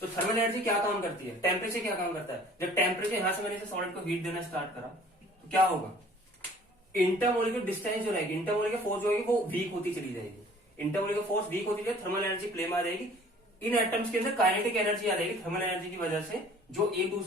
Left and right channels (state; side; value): normal; both; correlation 0.52